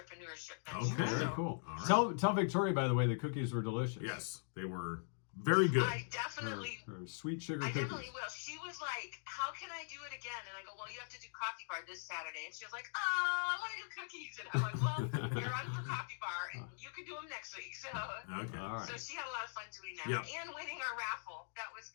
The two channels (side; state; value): right; silent; digital silence